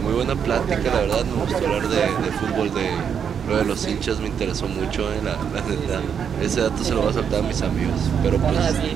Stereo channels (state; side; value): quieter; left; 7.5 dB